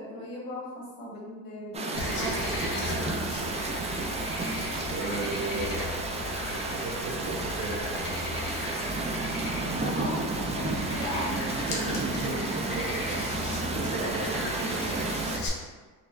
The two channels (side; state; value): both; normal; correlation 0.25